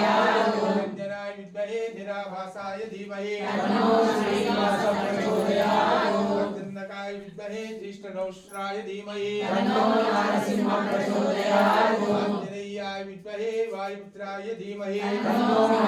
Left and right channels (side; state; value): both; identical; correlation 1.00